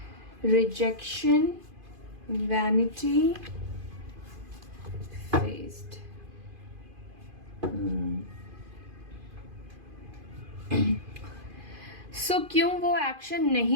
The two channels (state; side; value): late; left; 2.5 ms